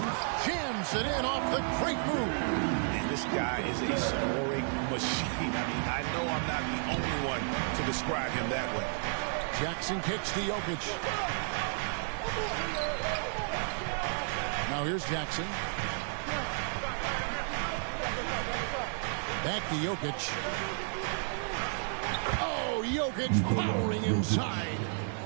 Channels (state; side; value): silent; left; 56 dB below the other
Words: Jams it in off the great move. And this guy is a scoring machine. I mean, I know I'm not the only one to describe him that way. Jackson kicks to Jokic. Now here's Jackson. Back to Jokic. Oh, Jokic powering inside.